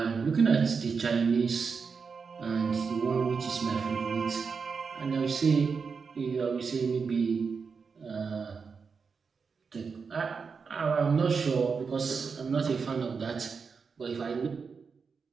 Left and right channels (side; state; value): left; quieter; 5.4 dB